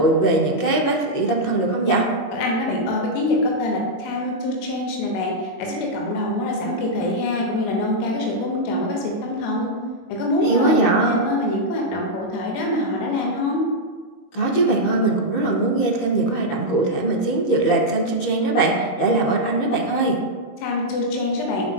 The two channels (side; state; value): right; late; 21 ms